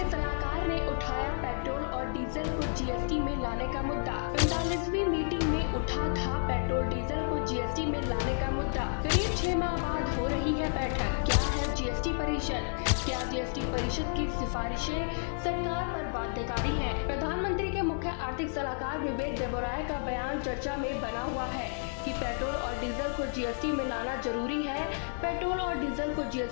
सलाहकार ने उठाया पेट्रोल और डीजल को जीएसटी में लाने का मुद्दा। 45वीं मीटिंग में उठा था पेट्रोल डीजल को जीएसटी में लाने का मुद्दा। करीब 6 माह बाद हो रही है बैठक। क्या है जीएसटी परिषद? क्या जीएसटी परिषद की सिफारिशें सरकार पर बाध्यकारी हैं? प्रधानमंत्री के मुख्य आर्थिक सलाहकार विवेक देबरॉय का बयान चर्चा में बना हुआ है कि पेट्रोल और डीजल को जीएसटी में लाना जरूरी है। पेट्रोल और डीजल को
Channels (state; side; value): silent; right; 57 dB below the other